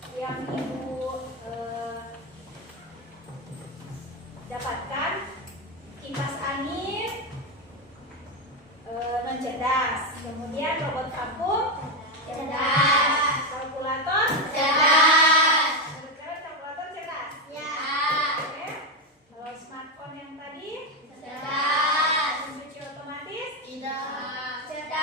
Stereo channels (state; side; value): normal; both; correlation 0.09